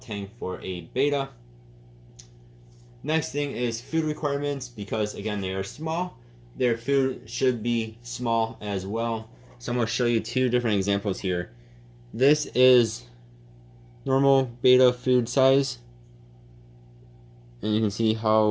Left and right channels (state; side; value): identical; both; correlation 1.00